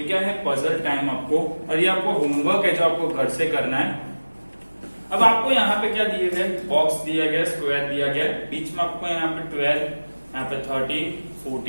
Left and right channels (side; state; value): both; inverted; correlation -1.00